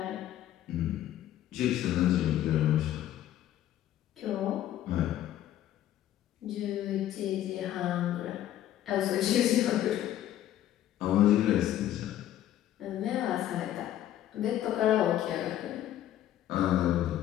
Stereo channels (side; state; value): right; quieter; 12.3 dB